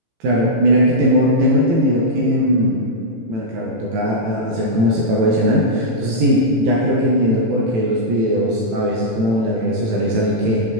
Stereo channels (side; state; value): left; late; 18 ms